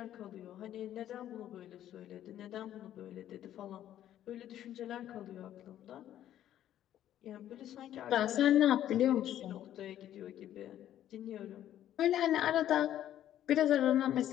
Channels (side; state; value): right; quieter; 11.7 dB